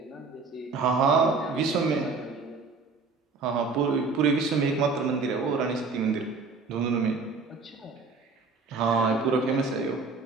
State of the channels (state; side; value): quieter; left; 4.2 dB